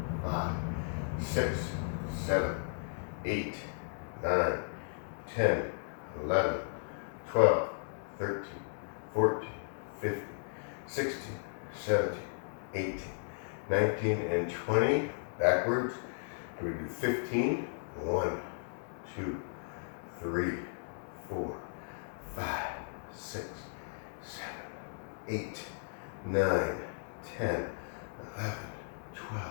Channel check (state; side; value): silent; right; digital silence